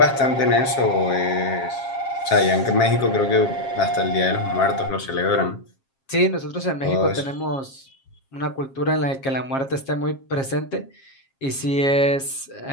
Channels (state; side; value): late; right; 7.4 ms